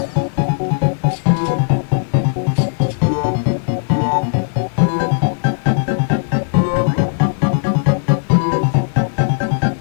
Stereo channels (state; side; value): silent; right; digital silence